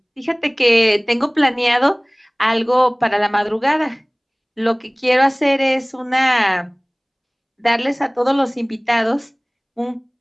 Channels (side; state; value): both; identical; correlation 1.00